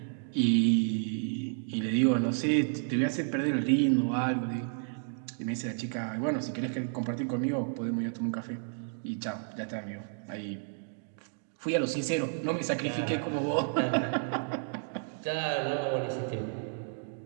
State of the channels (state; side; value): silent; left; digital silence